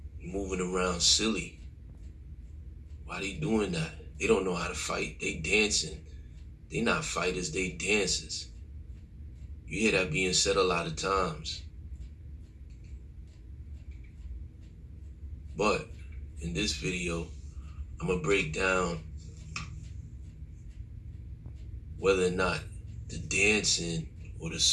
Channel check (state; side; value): identical; both; correlation 1.00